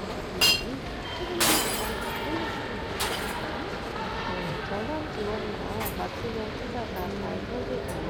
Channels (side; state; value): both; identical; correlation 1.00